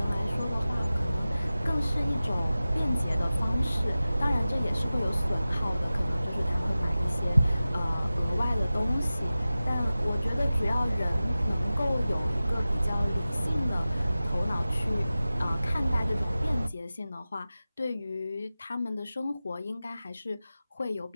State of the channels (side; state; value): both; inverted; correlation -0.95